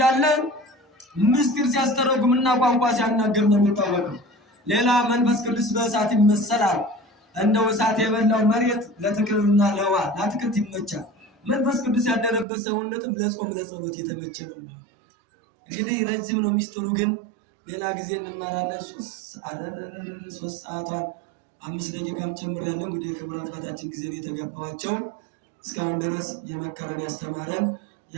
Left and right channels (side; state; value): left; drops out; at 12.5 s